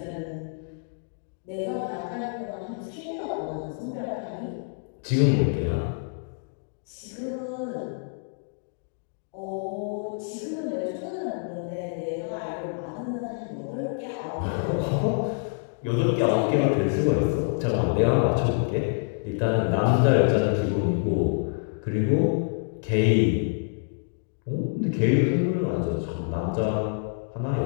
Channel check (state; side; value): silent; right; digital silence